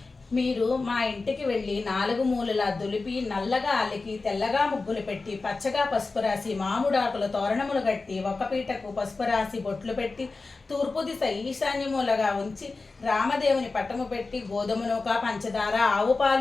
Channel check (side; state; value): right; quieter; 3.8 dB